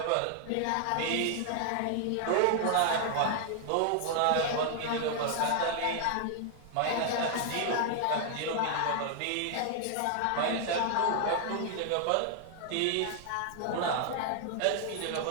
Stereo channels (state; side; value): different; both; correlation 0.00